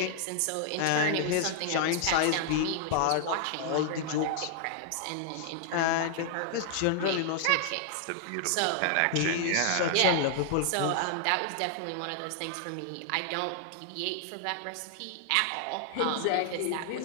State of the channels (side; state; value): both; different; correlation 0.00